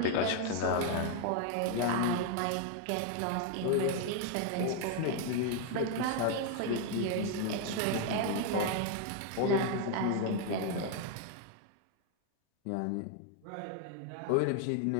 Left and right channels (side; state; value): both; different; correlation 0.01